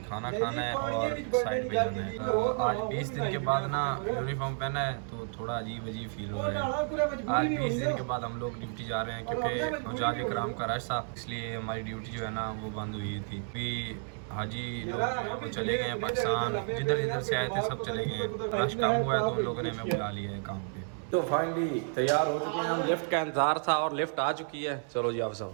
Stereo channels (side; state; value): left; silent; 57 dB below the other